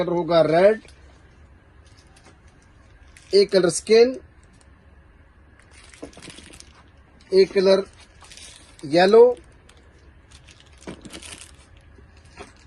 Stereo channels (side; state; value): both; identical; correlation 1.00